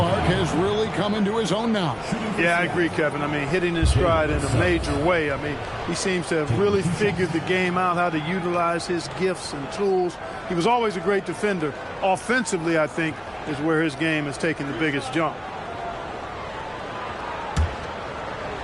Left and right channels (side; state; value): both; identical; correlation 1.00